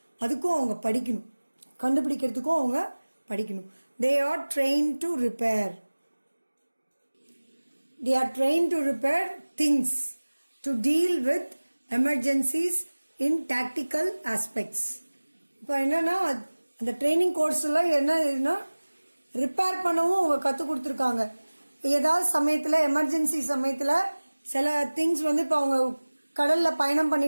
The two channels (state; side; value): inverted; both; correlation -1.00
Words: அதுக்கும் அவங்க படிக்கணும். கண்டுபிடிக்கிறதுக்கும் அவங்க படிக்கணும். They are train to repair. They are trained to repair things, to deal with emergencies in tactical aspects. இப்போ என்னன்னா அந்த ட்ரைனிங் கோர்ஸ்லாம் என்ன ரிப்பேர் பண்ணவும் அவங்க கற்றுக் கொடுத்துருக்காங்க. ஏதாவது சமயத்தில், எமர்ஜென்சி சமயத்தில் சில திங்ஸ் இப்போ அவங்க கடலில் பயணம்